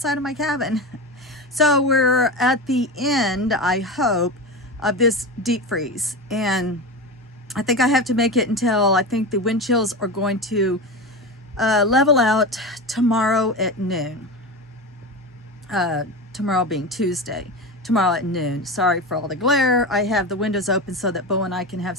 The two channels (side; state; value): both; normal; correlation 0.23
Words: of my cabin. So we're at the end, I hope, of this deep freeze, and I think I have to make it until I think the wind chills are going to level out tomorrow at noon. Tomorrow being Tuesday. Tomorrow at noon. Sorry for all the glare. I have the windows open so that Bo and I can have